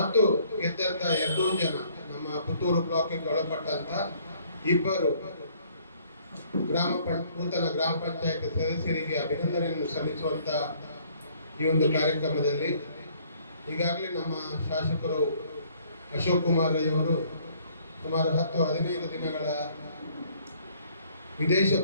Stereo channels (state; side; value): inverted; both; correlation -0.61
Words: ಗೆದ್ದಂಥ 2 ಜನ ನಮ್ಮ ಪುತ್ತೂರು ಬ್ಲಾಕಿಗೆ ಒಳಪಟ್ಟಂತ 2 ನೂತನ ಗ್ರಾಮ ಪಂಚಾಯತ್ ಸದಸ್ಯರಿಗೆ ಅಭಿನಂದನೆಯನ್ನು ಸಲ್ಲಿಸುವಂತ ಈ ಒಂದು ಕಾರ್ಯಕ್ರಮದಲ್ಲಿ ಈಗಾಗಲೇ ನಮ್ಮ ಶಾಸಕರು ಅಶೋಕ್ ಕುಮಾರ್ ರೈ ಅವರು ಸುಮಾರು 10-15 ದಿನಗಳ ವಿದೇಶ